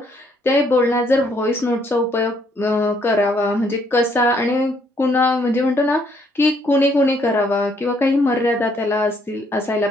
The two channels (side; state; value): both; normal; correlation 0.68